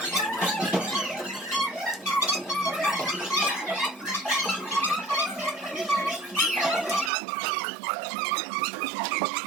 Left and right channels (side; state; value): left; drops out; at 7.1 s